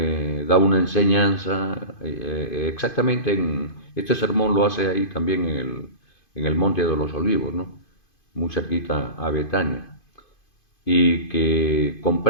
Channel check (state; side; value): late; right; 2.5 ms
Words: da una enseñanza, exactamente este sermón lo hace ahí también en el Monte de los Olivos, ¿no? Muy cerquita a Betania, y que